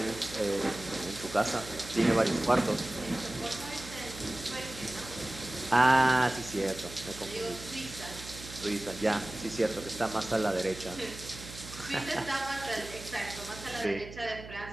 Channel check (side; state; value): right; noise; hum, 13 dB below the sound